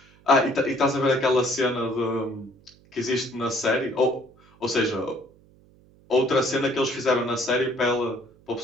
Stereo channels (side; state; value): right; noise; hum, 29 dB below the sound